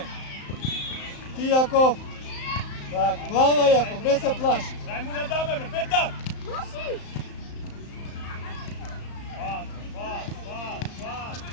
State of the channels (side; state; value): right; late; 35 ms